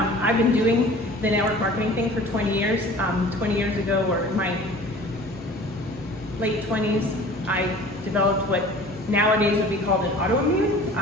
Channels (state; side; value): normal; both; correlation 0.45